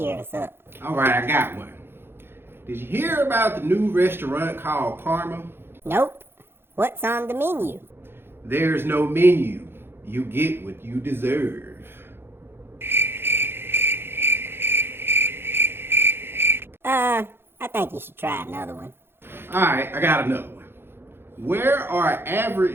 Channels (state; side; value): late; left; 0.11 ms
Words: us up. Alright, I got one. Did you hear about the new restaurant called Karma? Nope. What's on the menu? There's no menu. You get what you deserve. I think you should try another one. Alright, I got another one. Where are